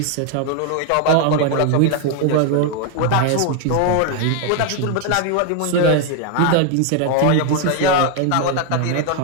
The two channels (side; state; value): both; different; correlation 0.00